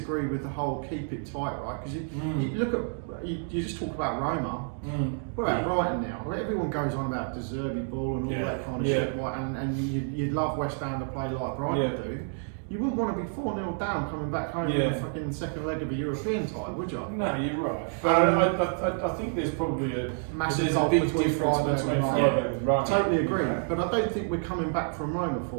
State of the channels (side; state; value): left; silent; 59 dB below the other